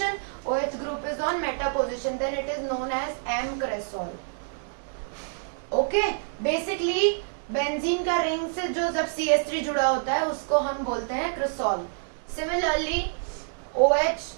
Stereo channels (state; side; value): silent; left; digital silence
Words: OH group is on meta position, then it is known as m-cresol. Okay, basically benzene का रिंग से जो जब CH3 जुड़ा होता है उसको हम बोलते हैं क्रेसॉल. सिमिलरली OH